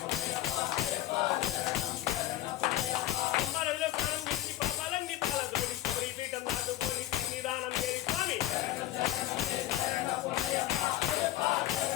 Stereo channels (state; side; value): quieter; right; 14.2 dB